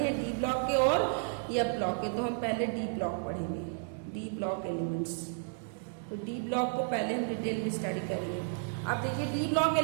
डी ब्लॉक के और एफ ब्लॉक के। तो हम पहले डी ब्लॉक पढ़ेंगे, डी ब्लॉक एलिमेंट्स। तो डी ब्लॉक को पहले हम डिटेल में स्टडी करेंगे। अब देखिए, डी ब्लॉक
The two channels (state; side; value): silent; left; digital silence